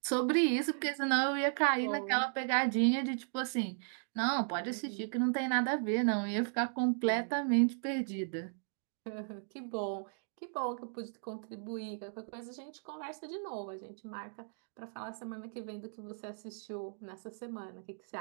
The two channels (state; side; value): silent; left; digital silence